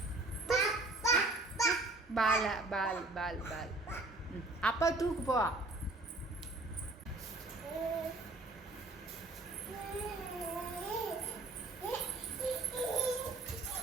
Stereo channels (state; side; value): quieter; left; 3.0 dB